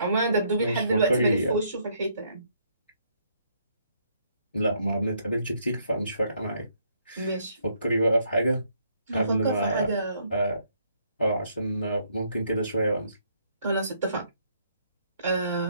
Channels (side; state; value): both; inverted; correlation -0.70